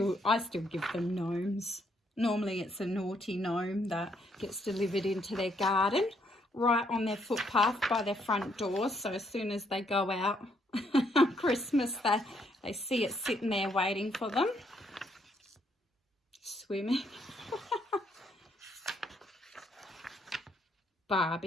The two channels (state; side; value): normal; both; correlation 0.72